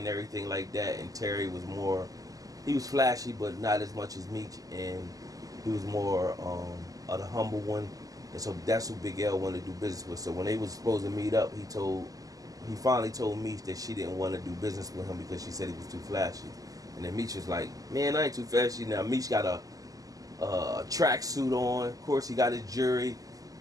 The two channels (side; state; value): left; late; 0.17 ms